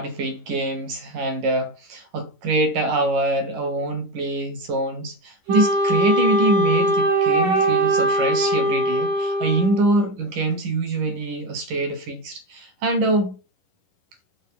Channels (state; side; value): late; left; 11 ms